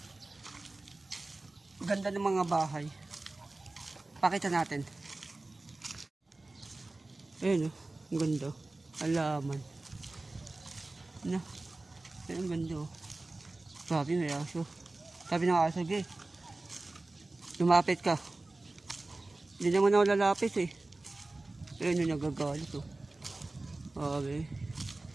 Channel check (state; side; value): quieter; left; 3.0 dB